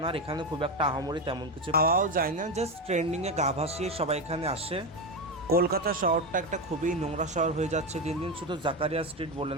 না। আর এখানে খুব একটা আহামরি তেমন কিছু পাওয়াও যায় না, জাস্ট ট্রেন্ডিংয়ে গা ভাসিয়ে সবাই এখানে আসে। কলকাতা শহরটা একটা খুবই নোংরা শহর হয়ে যাচ্ছে দিন দিন। শুধু জাকারিয়া স্ট্রিট বলে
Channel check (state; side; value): normal; both; correlation 0.14